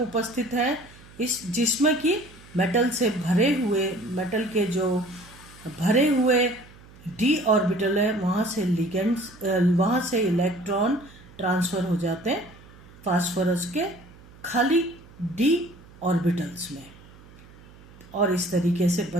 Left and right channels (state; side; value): noise; right; hum, 22 dB below the sound